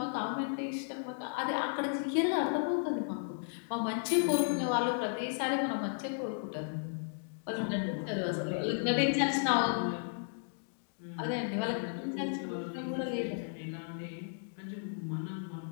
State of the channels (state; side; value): silent; right; digital silence